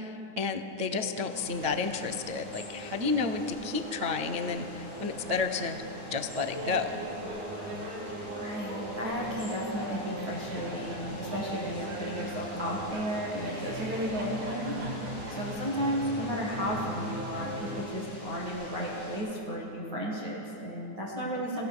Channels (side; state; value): left; late; 9.0 ms